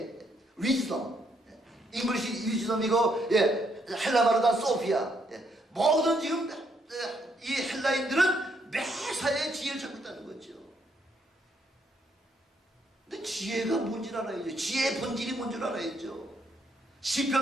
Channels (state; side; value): normal; both; correlation 0.73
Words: wisdom. 잉글리시 wisdom이고 헬라 말로 다 소피아. 모든 지금 이 헬라인들은 매사에 지혜를 찾고 있다는 거죠. 근데 지혜가 뭔지 알아야죠. 지혜의 본질이 뭔지 알아야죠.